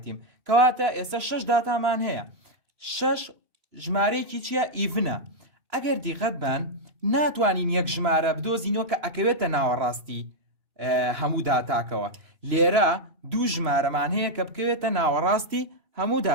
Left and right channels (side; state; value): left; late; 3.0 ms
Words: کەواتە ئێستا 6 داتامان هەیە. 6 ژمارەیەکی چییە؟ ئیڤنە. ئەگەر دیقەت بن ناتوانین یەک ژمارە بدۆزینەوە کە ئەکەوێتە ناوەڕاستی هەموو داتاکەوە. لێرە دوو ژمارەمان هەیە کە بکەوێتە ناوەڕاستی هەموو